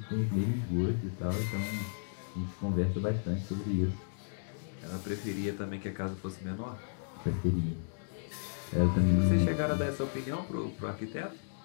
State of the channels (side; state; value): right; silent; digital silence